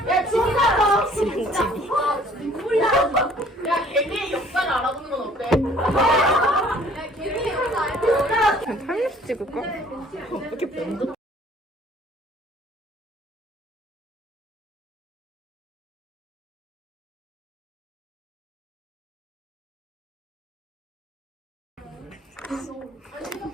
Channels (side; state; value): both; normal; correlation 0.56